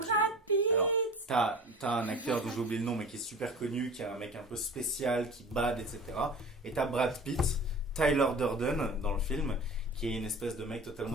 Pitt. Alors, t'as un acteur dont j'ai oublié le nom, mais qui est super connu, qui est un mec un peu spécial, qui bade, etc. Et t'as Brad Pitt, Tyler Durden dans le film, qui est une espèce de mec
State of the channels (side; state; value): both; normal; correlation 0.39